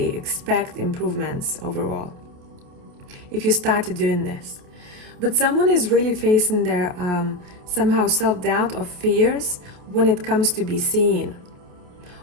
expect improvements overall. If you started doing this. But someone is really facing their somehow self-doubt or fears when it comes to be seen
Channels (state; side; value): late; left; 28 ms